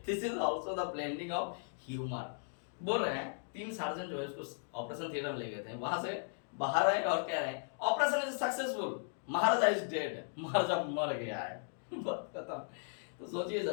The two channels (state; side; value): silent; right; digital silence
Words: this is also the blending of humour. बोल रहे हैं 3 सर्जन जो है उसको ऑपरेशन थिएटर में ले गए थे, वहां से बाहर आए और कह रहे हैं operation is successful, Maharaja is dead, Maharaja मर गया है। खत्म। तो सोचिए